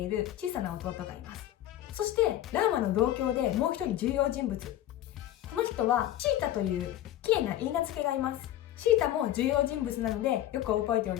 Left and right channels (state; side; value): quieter; right; 13.1 dB